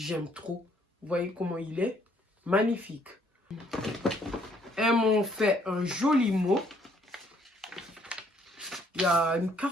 trop. Vous voyez comment il est? Magnifique. Elles m'ont fait un joli mot. Il y a une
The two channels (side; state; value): both; normal; correlation 0.65